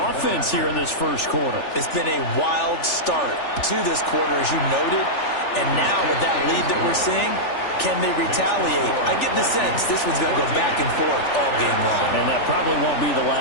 here in this first quarter. It's been a wild start to this quarter, as you noted. And now with that lead that we're seeing, can they retaliate? I get the sense this one's going to go back and forth all game long. And that probably won't be the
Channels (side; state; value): right; late; 3.4 ms